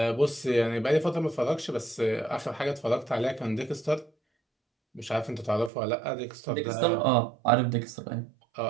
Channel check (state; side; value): drops out; left; at 5.7 s